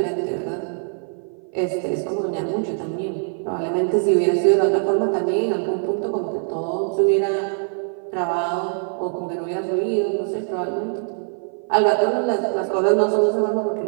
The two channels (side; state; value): left; silent; 55 dB below the other